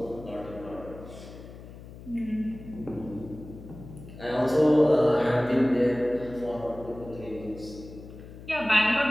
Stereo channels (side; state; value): left; noise; hum, 16 dB below the sound